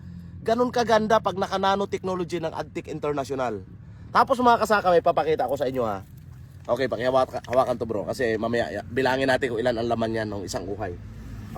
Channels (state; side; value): identical; both; correlation 1.00